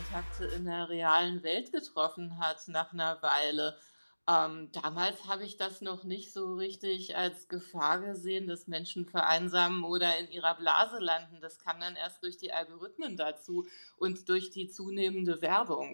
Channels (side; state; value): both; inverted; correlation -1.00